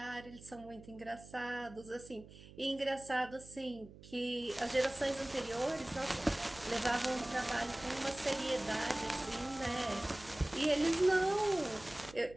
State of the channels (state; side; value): noise; right; hum, 18 dB below the sound